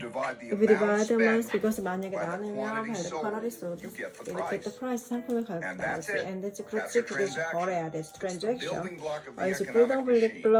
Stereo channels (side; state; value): both; identical; correlation 1.00